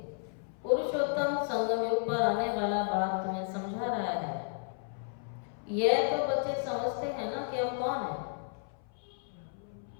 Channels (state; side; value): silent; right; 56 dB below the other